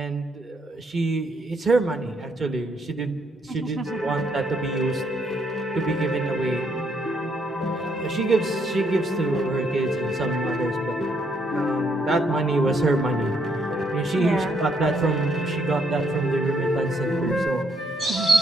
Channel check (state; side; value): normal; both; correlation 0.72